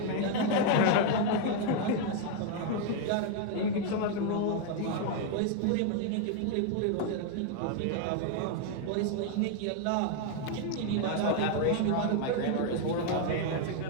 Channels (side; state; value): both; different; correlation 0.00